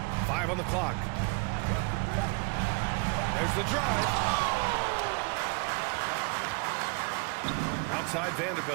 5 on the clock. There's the drive. Outside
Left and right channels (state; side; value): quieter; left; 30.9 dB